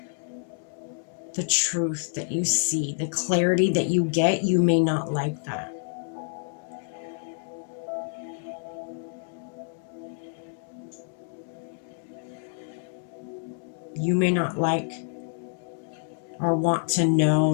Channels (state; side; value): silent; right; digital silence